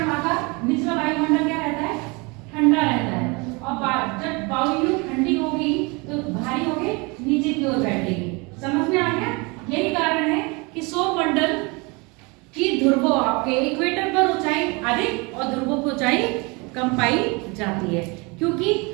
वहां का निचला वायुमंडल क्या रहता है? ठंडा रहता है। और जब वायु ठंडी होगी तो भारी होके नीचे की ओर बैठेगी। समझ में आ गया? यही कारण है कि सौरमंडल की ध्रुवों, आपके इक्वेटर पर ऊंचाई अधिक और ध्रुवों की ऊंचाई कम पाई जाती है। क्योंकि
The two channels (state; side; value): quieter; left; 28.1 dB